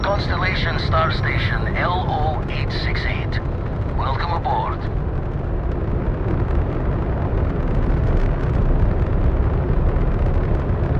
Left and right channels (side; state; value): both; identical; correlation 1.00